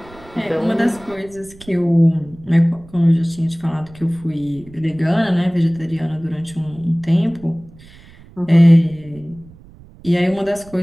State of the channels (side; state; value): right; noise; rumble, 22 dB below the sound